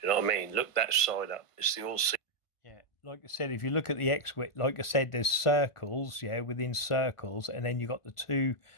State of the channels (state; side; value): late; right; 1.5 ms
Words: You know what I mean? Look that sign up. It's the all. Yeah, like I said, if you look at the X, like I said, there's circles, yeah, within circles, and then you got the 2